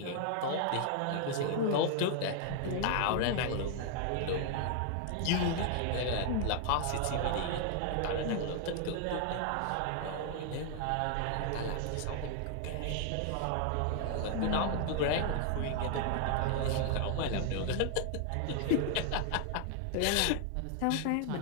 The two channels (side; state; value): both; different; correlation 0.00